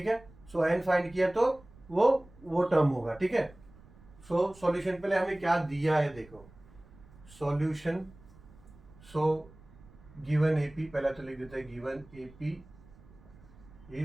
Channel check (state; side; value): noise; right; rumble, 23 dB below the sound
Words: है। सो एन फाइंड किया तो वो टर्म होगा, ठीक है। सो सॉल्यूशन पहले हमें क्या दिया है देखो, सॉल्यूशन, सो गिवन एपी, पहला तो लिख देते हैं गिवन एपी